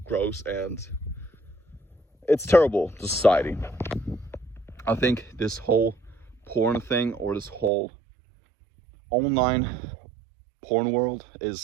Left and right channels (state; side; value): drops out; left; at 7.7 s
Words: gross and it's terrible to society. I think this whole porn thing, or this whole online porn world,